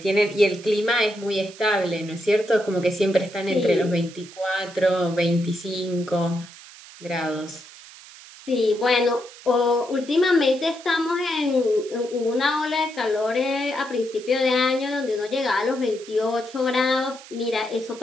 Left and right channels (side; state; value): right; noise; hiss, 19 dB below the sound